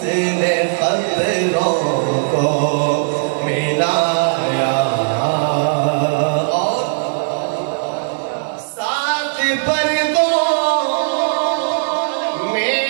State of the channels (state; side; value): silent; left; 60 dB below the other